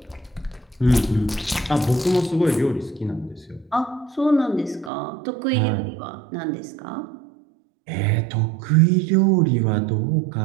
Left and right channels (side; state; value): left; drops out; at 4.9 s